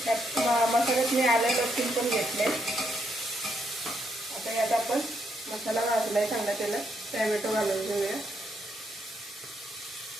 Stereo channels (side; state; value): both; normal; correlation 0.77